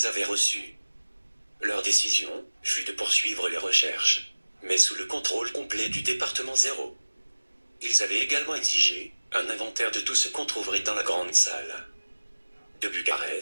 avaient reçues. Leur décision fut de poursuivre les recherches, mais sous le contrôle complet du département 0. Ils avaient également exigé un inventaire de tout ce qu'on trouverait dans la grande salle. De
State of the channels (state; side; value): inverted; both; correlation -1.00